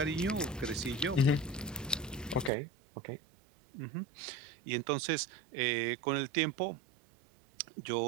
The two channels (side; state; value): left; drops out; at 2.5 s